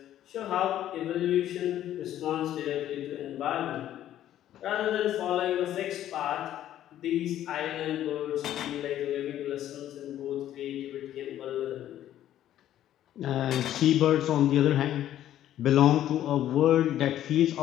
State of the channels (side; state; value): right; quieter; 12.1 dB